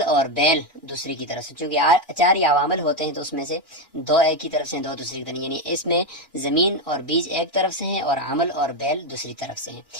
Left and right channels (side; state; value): both; normal; correlation 0.08